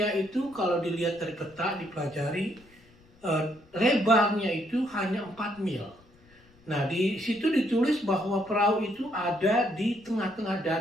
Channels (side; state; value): left; noise; rumble, 29 dB below the sound